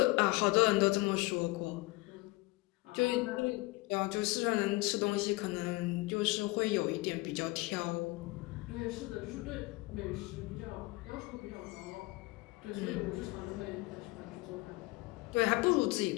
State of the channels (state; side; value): quieter; right; 22.6 dB